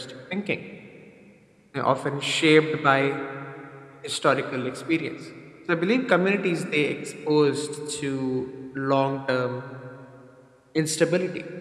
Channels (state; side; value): identical; both; correlation 1.00